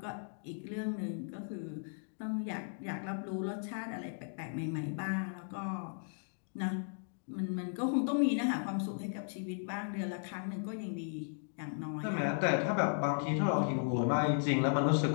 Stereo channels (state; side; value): silent; right; digital silence